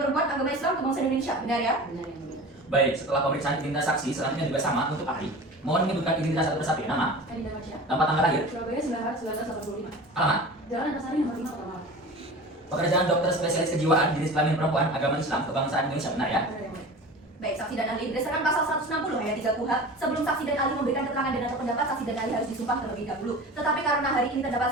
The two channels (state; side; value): normal; both; correlation 0.36